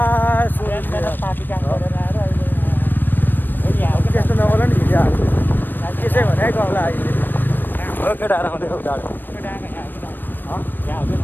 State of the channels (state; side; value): late; right; 0.093 ms